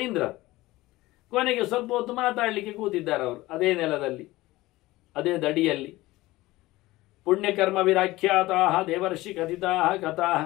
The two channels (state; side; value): quieter; right; 18.6 dB